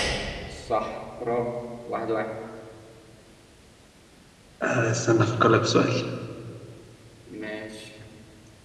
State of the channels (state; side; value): identical; both; correlation 1.00